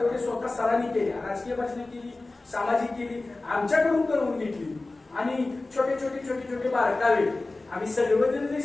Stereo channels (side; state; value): right; quieter; 3.2 dB